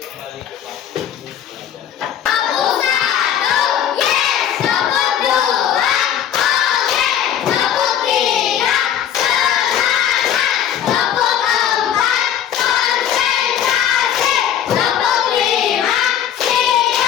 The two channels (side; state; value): right; quieter; 9.8 dB